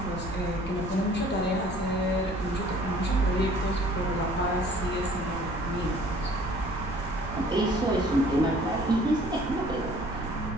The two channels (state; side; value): noise; right; rumble, 11 dB below the sound